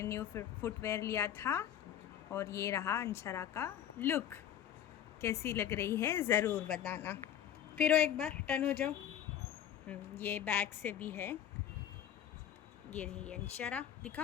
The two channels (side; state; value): right; quieter; 10.1 dB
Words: न्यू फुटवेयर लिया था और ये रहा अंशरा का लुक। कैसी लग रही है ज़रूर बताना। फिर एक बार टर्न हो जाओ। ये बैग से भी है। ये रही अंशरा,